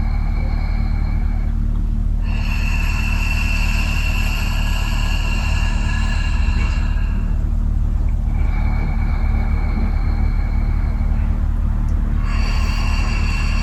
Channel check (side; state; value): both; identical; correlation 1.00